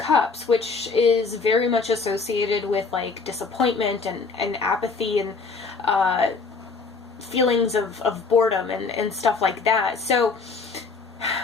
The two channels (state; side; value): quieter; right; 4.5 dB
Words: which is very much associated with like disappointment and apathy and feelings of boredom and stuff like that. So